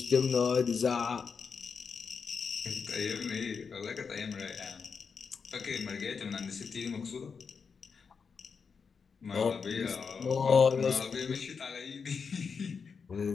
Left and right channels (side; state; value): right; quieter; 5.7 dB